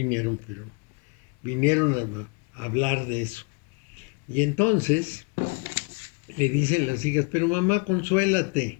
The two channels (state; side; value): quieter; right; 30.6 dB